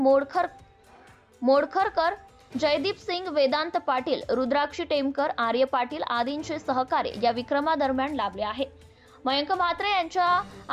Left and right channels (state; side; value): identical; both; correlation 1.00